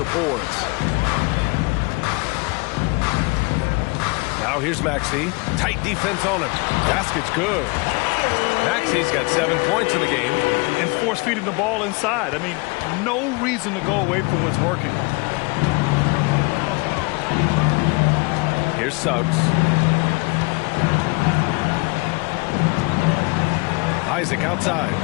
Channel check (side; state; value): right; quieter; 28.2 dB